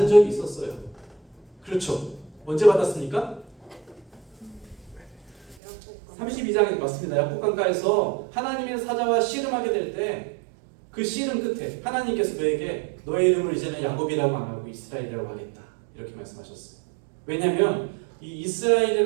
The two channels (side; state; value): left; drops out; at 5.6 s